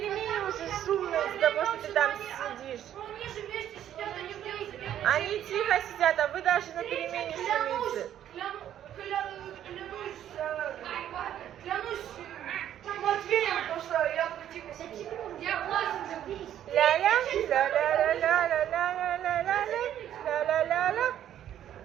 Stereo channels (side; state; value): left; quieter; 10.9 dB